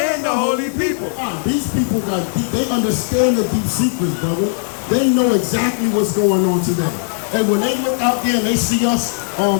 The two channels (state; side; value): silent; right; digital silence